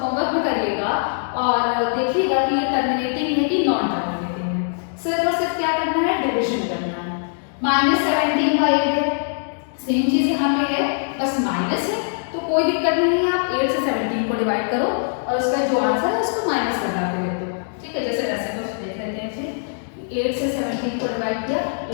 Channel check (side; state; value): right; silent; digital silence